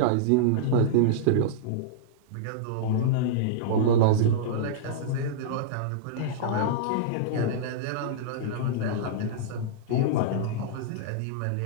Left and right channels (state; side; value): different; both; correlation -0.03